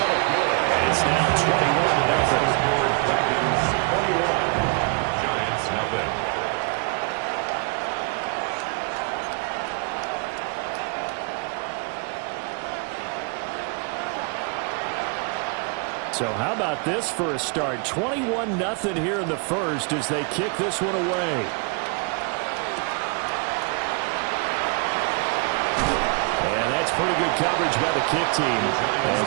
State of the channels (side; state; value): left; quieter; 35.5 dB